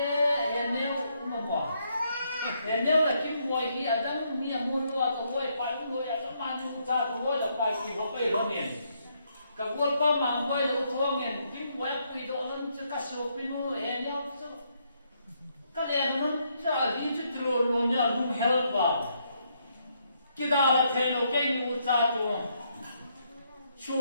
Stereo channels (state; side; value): inverted; both; correlation -0.75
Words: nếu mà bỏ nếu là kim mồi thì ở đâu như mua loa tàu mồi phải mồi ở các bạn chúng ta tàu mồi là phải kỳ có phải lo miền cả quân có mà mồi là thua miền kim mồi quy độ lên cho các số pinu nếu các em nó cho đi chút rồi luôn nhá luôn help vào cái đó là thấy nó cái như ta tu